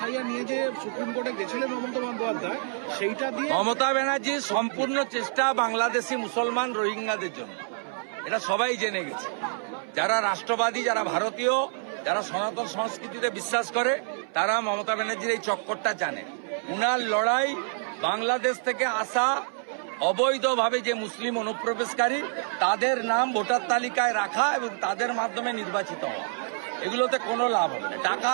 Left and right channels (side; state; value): left; silent; 60 dB below the other